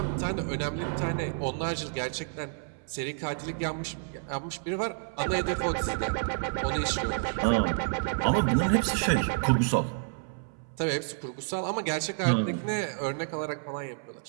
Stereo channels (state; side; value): silent; left; 57 dB below the other